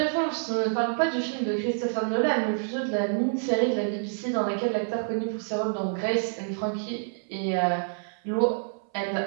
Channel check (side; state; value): left; silent; 60 dB below the other